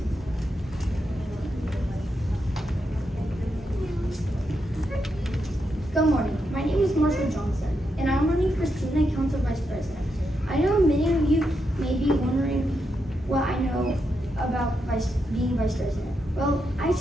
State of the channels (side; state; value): both; normal; correlation 0.83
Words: Good morning. My name is Marshall Johnson, and I'm running for Student Council Vice President. I know many of you may be wondering what I know about being Vice President. Well, I